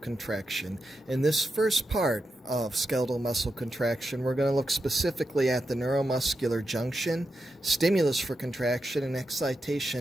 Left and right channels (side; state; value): both; normal; correlation 0.87